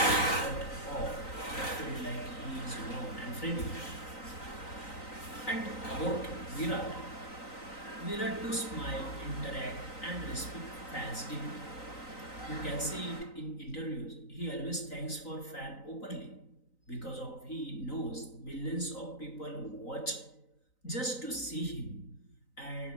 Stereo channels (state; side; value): late; right; 3.9 ms